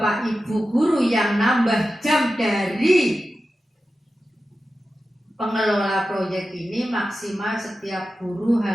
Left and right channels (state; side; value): normal; both; correlation 0.93